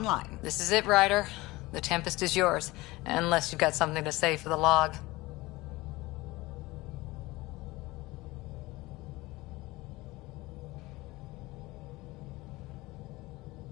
This is it, Ryder. The Tempest is yours, unless you've got something to say for the log.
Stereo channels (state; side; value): quieter; right; 20.6 dB